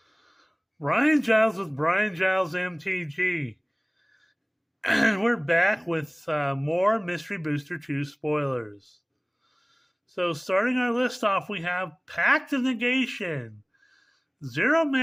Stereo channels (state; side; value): identical; both; correlation 1.00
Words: Brian Giles with Brian Giles MTG. And we're back with more Mystery Booster 2 spoilers. So starting our list off, we have Pact of Negation. 0